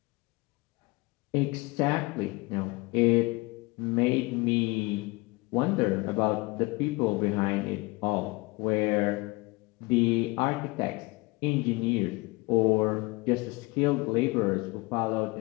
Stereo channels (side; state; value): right; quieter; 24.4 dB